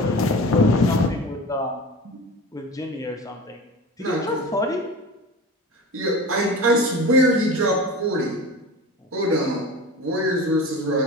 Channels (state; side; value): normal; both; correlation 0.33